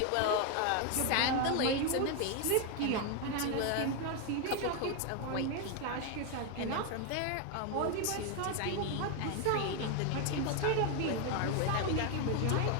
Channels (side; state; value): both; different; correlation 0.01